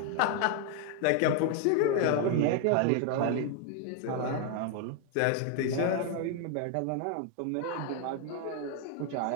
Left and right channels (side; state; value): both; different; correlation 0.00